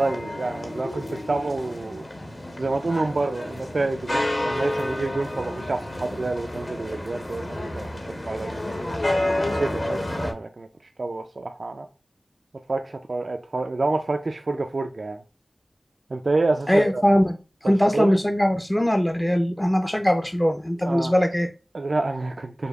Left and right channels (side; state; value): both; normal; correlation 0.98